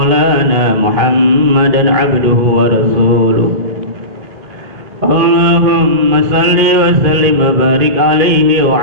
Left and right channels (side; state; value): left; late; 2.5 ms